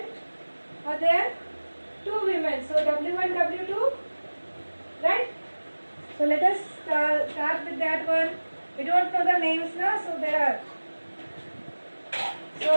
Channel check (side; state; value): both; inverted; correlation -1.00